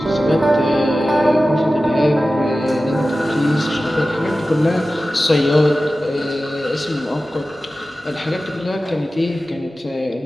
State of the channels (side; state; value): both; normal; correlation 0.95